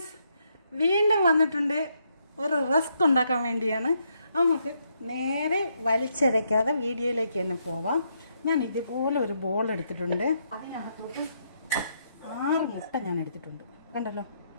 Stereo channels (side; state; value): both; inverted; correlation -0.76